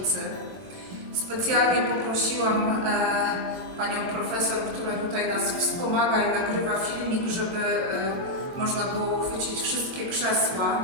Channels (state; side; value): late; left; 22 ms